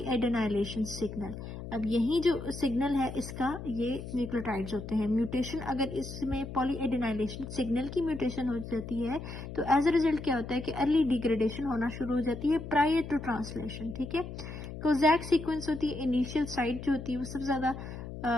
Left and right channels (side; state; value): left; noise; hum, 9 dB below the sound